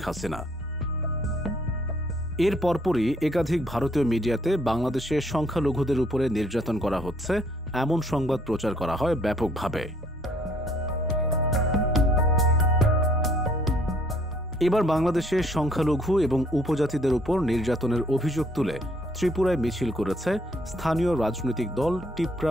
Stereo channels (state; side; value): normal; both; correlation 0.63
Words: হাসিনা। এর পরপরই একাধিক ভারতীয় মিডিয়াতে বাংলাদেশে সংখ্যালঘুদের উপরে নির্যাতন করা হচ্ছে এমন সংবাদ প্রচার করা হয় ব্যাপকভাবে। এবার বাংলাদেশে সংখ্যালঘু এবং উপজাতিদের উপর নির্যাতনের অভিযোগ তুলে ত্রিপুরায় মিছিল করেছে স্থানীয় রাজনৈতিক দল টিপ্রা